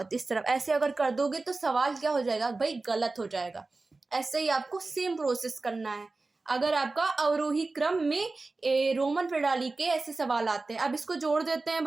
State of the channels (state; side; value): quieter; left; 3.5 dB